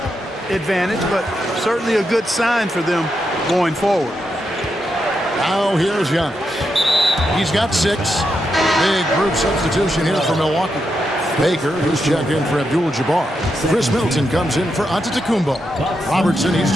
advantage, but certainly a good sign for them going forward. Now here's Giannis. He's got 6. Big group substitution here for Milwaukee. Baker, who's checked in for Abdul-Jabbar. Chris Middleton comes in for Antetokounmpo. Robertson, he's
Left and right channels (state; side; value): normal; both; correlation 0.84